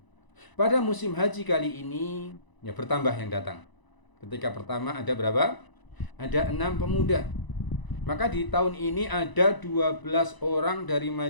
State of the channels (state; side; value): late; right; 1.0 ms